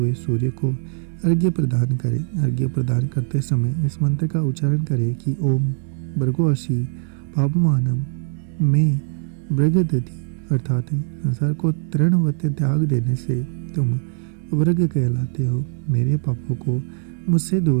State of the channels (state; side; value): silent; left; digital silence